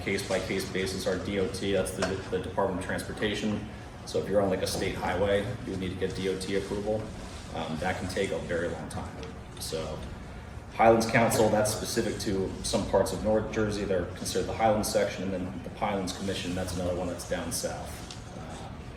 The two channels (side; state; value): both; identical; correlation 1.00